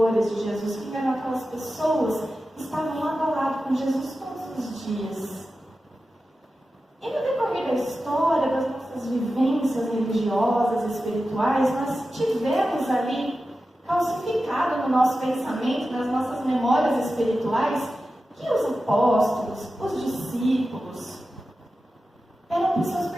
de Jesus? Quem eram aquelas pessoas que estavam lado a lado com Jesus todos os dias? E no decorrer da história, das nossas vivências religiosas e espirituais, nós tivemos ali calcificado no nosso pensamento, nas nossas memórias espirituais, que os apóstolos, os discípulos, eram pessoas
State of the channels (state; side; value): normal; both; correlation 0.93